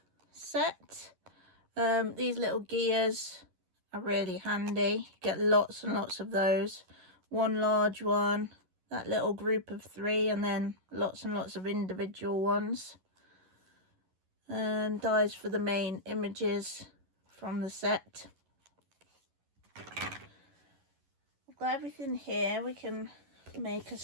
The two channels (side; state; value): left; late; 11 ms